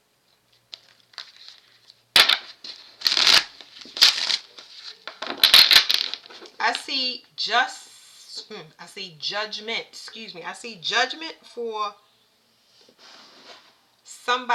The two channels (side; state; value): both; identical; correlation 1.00